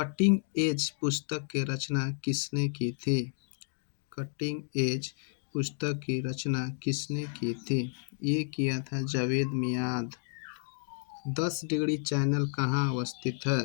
एज पुस्तक की रचना किसने की थी? कटिंग एज पुस्तक की रचना किसने की थी? ये किया था जावेद मियाद। 10 डिग्री चैनल कहाँ अवस्थित है?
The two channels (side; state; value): right; silent; 57 dB below the other